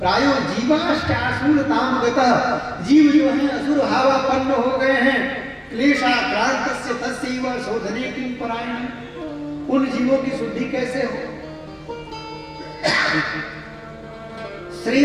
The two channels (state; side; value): identical; both; correlation 1.00